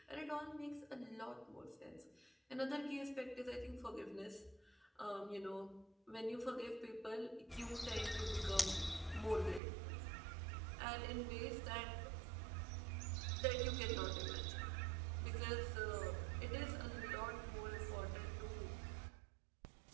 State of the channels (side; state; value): left; drops out; at 9.6 s